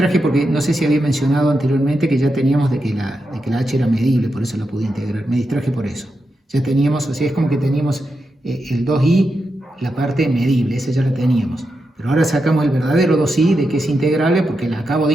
porque no sé si había mencionado anteriormente que ya teníamos de que la h era medible, por eso la pude integrar. Me distraje por eso. Ya teníamos, o sea, es como que teníamos el 2i, la parte medible, esa ya la teníamos. Pero ahora sacamos el verdadero 2i de que es integrable porque la acabo de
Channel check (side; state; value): both; normal; correlation 0.87